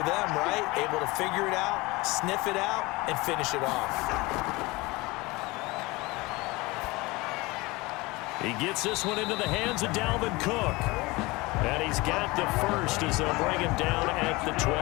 them, right? Able to figure it out, sniff it out, and finish it off. He gets this one into the hands of Dalvin Cook. And he's got the first as they'll bring him down at the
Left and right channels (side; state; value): right; quieter; 22.8 dB